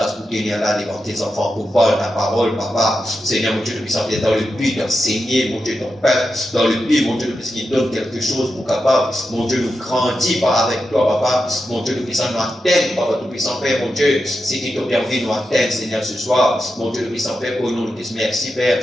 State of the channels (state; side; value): normal; both; correlation 0.88